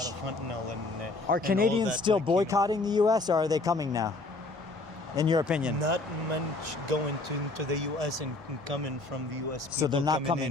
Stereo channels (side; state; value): right; quieter; 3.1 dB